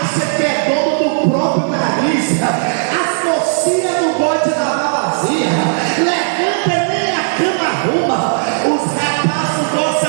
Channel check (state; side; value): silent; left; 66 dB below the other